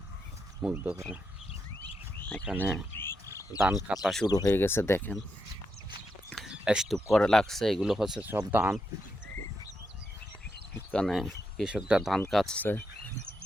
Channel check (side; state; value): both; normal; correlation 0.83